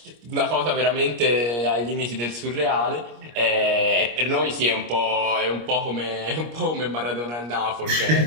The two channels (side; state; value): left; late; 25 ms